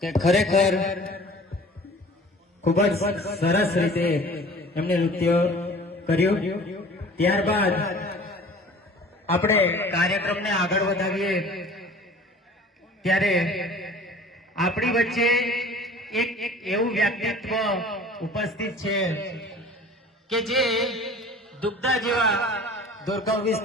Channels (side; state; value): both; normal; correlation 0.46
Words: કે ખરેખર ખૂબ જ સરસ રીતે એમને નૃત્ય કર્યું। ત્યારબાદ આપણે કાર્યક્રમને આગળ વધાવીએ ત્યારે આપણી વચ્ચે એક એવું વ્યક્તિત્વ ઉપસ્થિત છે કે જે દુગ્ધા જેવા દુર્ગમ